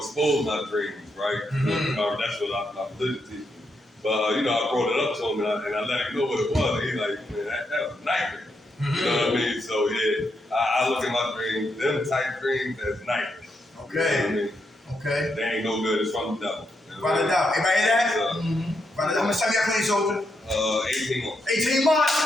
my dreams, right? That's what I'm living to. But I brought it up to him and I let him know what it was. And he's like, man, that was a nightmare. You know what I mean? So yeah, I look at my dreams, them type dreams as nightmares. Okay. You know what I mean? Okay. They ain't no good. It's from the devil. Write it down. Everybody hear that? So, How much time you got clean, soldier? 18 months. 18 months.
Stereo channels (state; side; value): normal; both; correlation 0.81